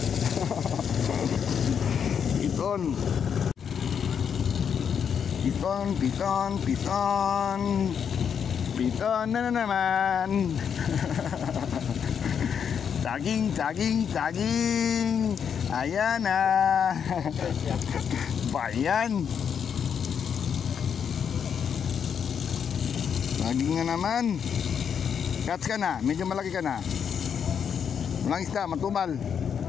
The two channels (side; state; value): right; quieter; 7.5 dB